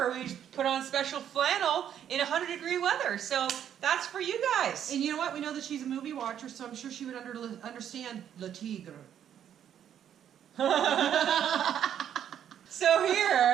we put on special flannel in 100-degree weather. So that's for you guys. And you know what? We know that she's a movie watcher, so I'm sure she would understand Le Tigre. So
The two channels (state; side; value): quieter; left; 9.7 dB